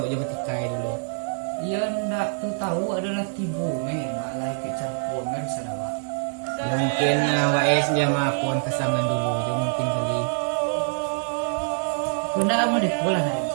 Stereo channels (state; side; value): silent; left; 56 dB below the other